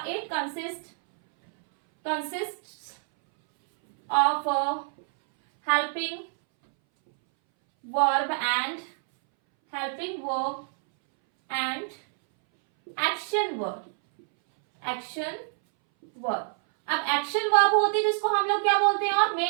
it consist of helping verb and action verb, action verb. अब एक्शन वर्ब होती है जिसको हम लोग क्या बोलते हैं, और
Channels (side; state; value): left; silent; 60 dB below the other